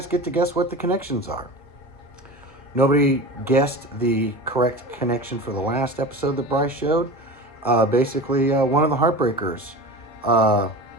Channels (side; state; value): both; normal; correlation 0.32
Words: get to guess what the connections are. Nobody guessed the correct connection for the last episode that Bryce showed. Basically, one of the Heartbreakers